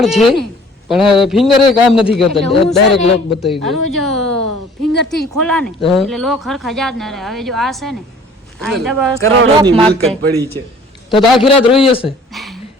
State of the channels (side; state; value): both; normal; correlation 0.52